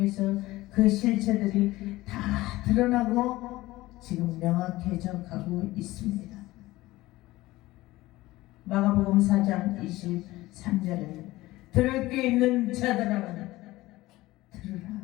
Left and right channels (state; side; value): quieter; right; 18.2 dB